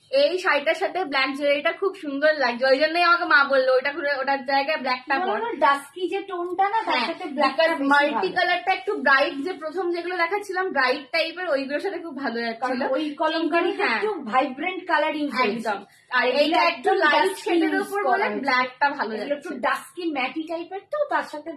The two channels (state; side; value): identical; both; correlation 1.00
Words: এই শাড়িটার সাথে ব্ল্যাক জুয়েলারিটা খুব সুন্দর লাগছে, ওই জন্যই আমাকে মা বললো ওইটা ঘুরে ওটার জায়গায় ব্ল্যাকটা পর। ডাস্কি যে টোনটা না, তার সাথে ব্ল্যাকটা মাল্টি কালারটা একটু ব্রাইট, যে প্রথম যেগুলো দেখাচ্ছিলাম ব্রাইট টাইপের, ওইগুলোর সাথে খুব ভালো যাচ্ছিল। ওই কলমকারিতে একটু ভাইব্রেন্ট কালার ইউজ একদম, আর এইটা একটু লাইট শেডের উপর বলে ব্ল্যাকটা ভালো যাচ্ছে, একটু ডাস্কি ম্যাটি টাইপের, তো তার সাথে